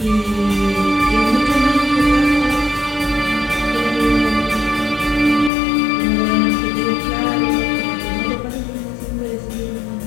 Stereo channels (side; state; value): right; drops out; at 5.5 s